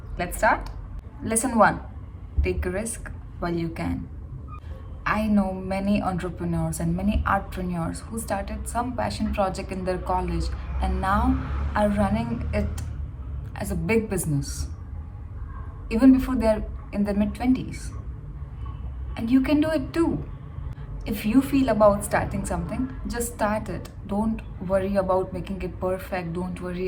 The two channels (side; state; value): both; identical; correlation 1.00